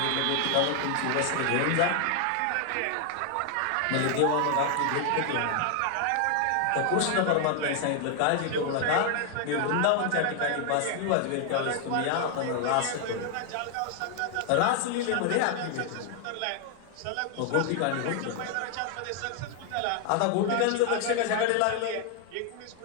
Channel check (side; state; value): both; different; correlation 0.00